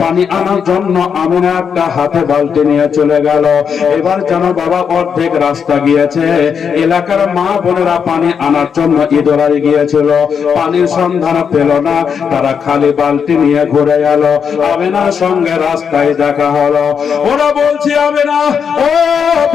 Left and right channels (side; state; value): right; quieter; 6.9 dB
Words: পানি আনার জন্য আমিনা একটা হাতে বালতি নিয়ে চলে গেল। এবার যেন বাবা অর্ধেক রাস্তা গিয়েছে, এলাকার মা বোনেরা পানি আনার জন্য ইঁদুরাই গিয়েছিল, পানির সন্ধান পেল না, তারা খালি বালতি নিয়ে ঘুরে গেল। আমিনার সঙ্গে রাস্তায় দেখা হলো। ওরা বলছে আমিনা, ও